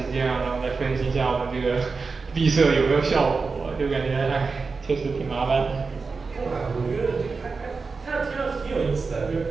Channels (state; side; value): quieter; left; 4.5 dB